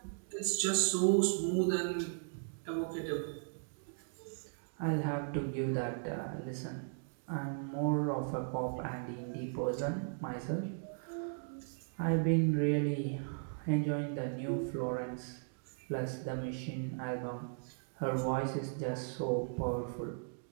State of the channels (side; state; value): left; silent; digital silence